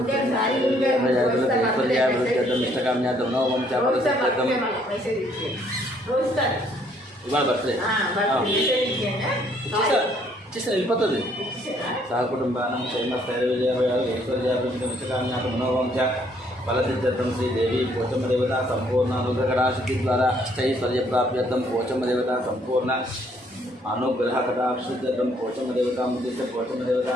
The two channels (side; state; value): both; normal; correlation 0.65